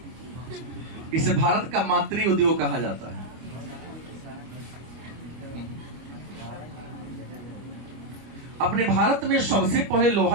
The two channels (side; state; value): left; late; 25 ms